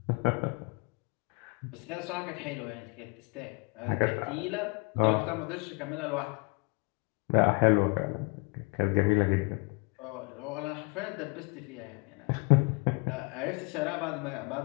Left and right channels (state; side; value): quieter; right; 30.7 dB